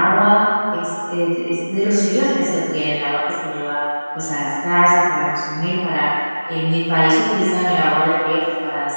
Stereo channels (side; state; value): both; inverted; correlation -1.00